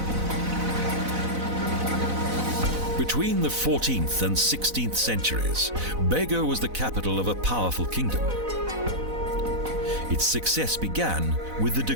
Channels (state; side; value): late; left; 4.0 ms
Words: Between the 14th and 16th centuries, Bago was the capital of a powerful kingdom. Its success began with the